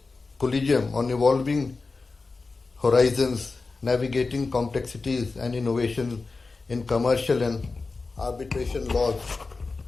colloquium on evolving horizons, navigating complexities and innovations in commercial and arbitration laws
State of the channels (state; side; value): quieter; right; 3.9 dB